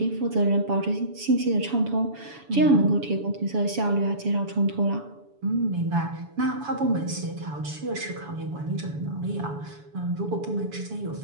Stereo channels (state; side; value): late; left; 7.0 ms